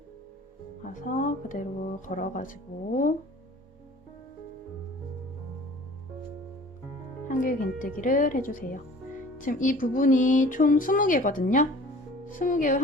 가서 그대로 걸어가지고 한길 긴뜨기를 해주세요. 지금 이 부분이 총 20개거든요. 20개의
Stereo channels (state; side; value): normal; both; correlation 0.47